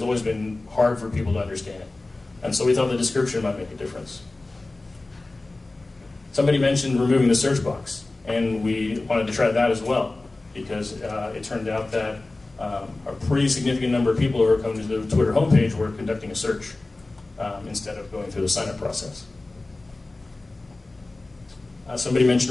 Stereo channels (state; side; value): quieter; right; 3.1 dB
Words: always been hard for people to understand. And so we thought the description might make a difference. Somebody mentioned removing the search box, and we wanted to try that as well, because it turned out that a pretty significant number of people who were coming to the Twitter homepage were conducting a search instead of going through the sign-up process. Somebody